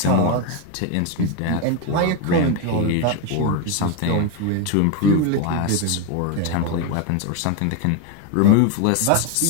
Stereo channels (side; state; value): both; different; correlation 0.02